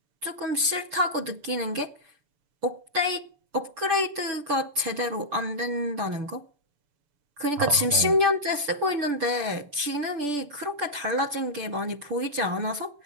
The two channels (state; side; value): late; left; 6.8 ms